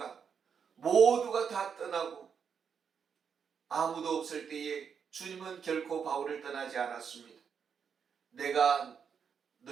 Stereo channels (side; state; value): left; quieter; 6.9 dB